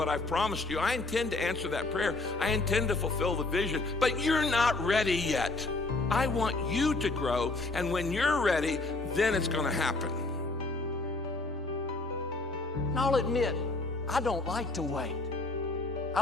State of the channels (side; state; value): right; quieter; 3.2 dB